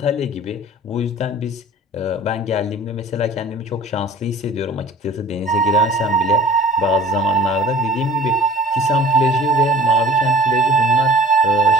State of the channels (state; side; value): normal; both; correlation 0.46